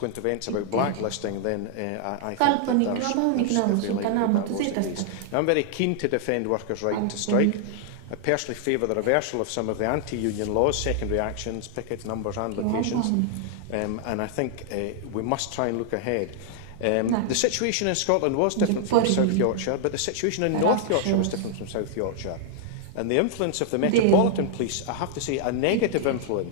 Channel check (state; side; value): different; both; correlation -0.01